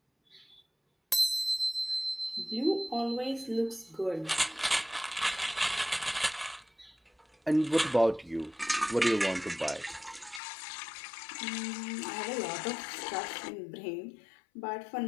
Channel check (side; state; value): right; drops out; at 10.4 s